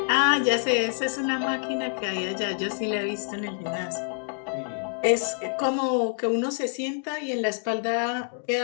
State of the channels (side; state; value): right; silent; digital silence